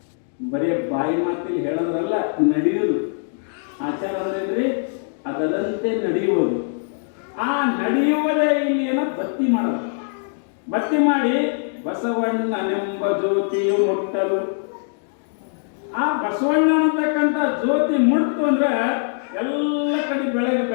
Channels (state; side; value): silent; right; digital silence